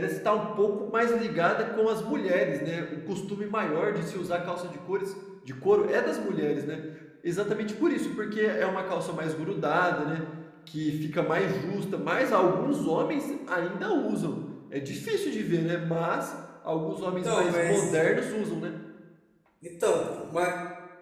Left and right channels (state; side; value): identical; both; correlation 1.00